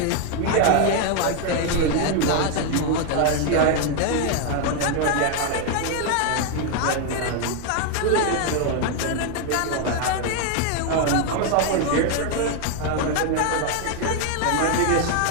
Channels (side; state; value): both; different; correlation 0.01